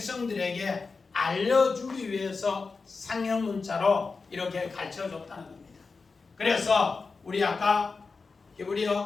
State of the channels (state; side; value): quieter; right; 4.4 dB